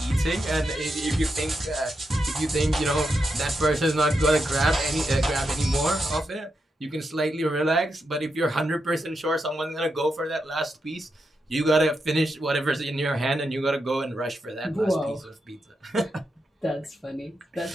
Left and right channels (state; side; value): normal; both; correlation 0.85